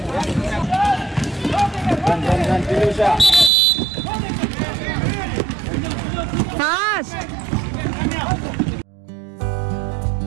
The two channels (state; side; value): drops out; left; at 3.5 s